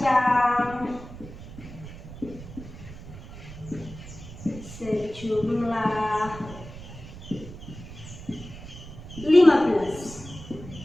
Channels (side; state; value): right; noise; rumble, 14 dB below the sound